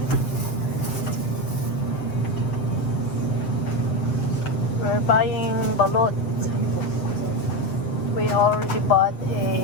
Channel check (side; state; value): right; late; 7.7 ms